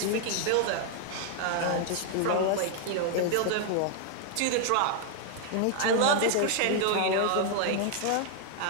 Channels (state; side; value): different; both; correlation 0.00